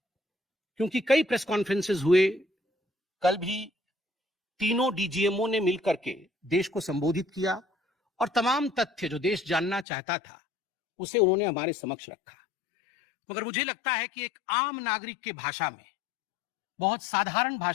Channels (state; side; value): drops out; right; at 9.9 s